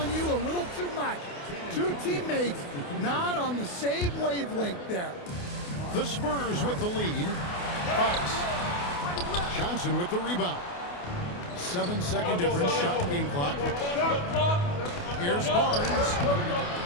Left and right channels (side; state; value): right; late; 28 ms